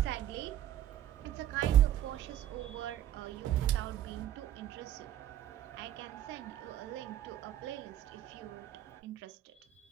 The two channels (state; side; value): quieter; left; 12.2 dB